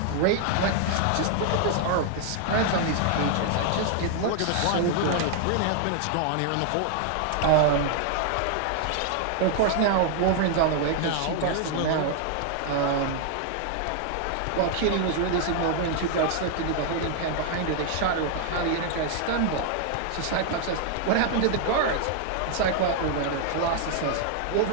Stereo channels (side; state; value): both; different; correlation 0.00